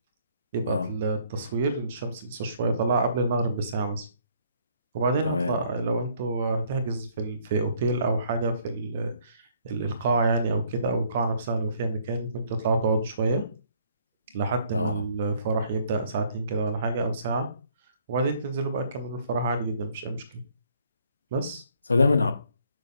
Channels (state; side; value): inverted; both; correlation -0.64